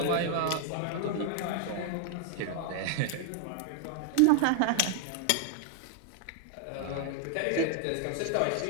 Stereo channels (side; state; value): both; different; correlation 0.00